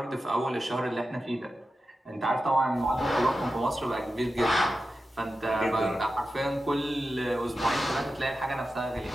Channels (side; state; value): both; normal; correlation 0.91